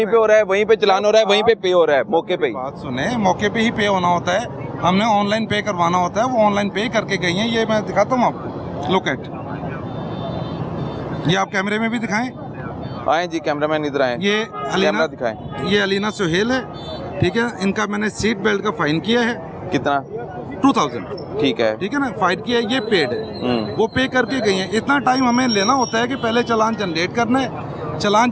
पे हो रहा है, वहीं पे चलान हो रहा है, वहीं पे पे हो रहा है, मौके पे ही। बात सुने, मौके पे ही पे होना होता है, हमने ऑनलाइन पे करवाना होता है, वो ऑनलाइन पे करके गई हैं। ये मैं दिखाता हूँ आपको, लुक एट, ये आप कैमरे में भी दिखाएं। आए जी, कैमरामैन इधर आए, ये कैमरा दिखाएं। ये अलीना सुहेल है, ठीक है। इनका मैंने सीट बेल्ट का फाइन किया है। कितना? 2000, ठीक है, ठीक है ना। फाइन किया है, ये पेड है, वो पे करके गई हैं। इतना टाइम हमें लेना होता है कि पहले चालान जनरेट करना है, चालान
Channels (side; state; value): both; identical; correlation 1.00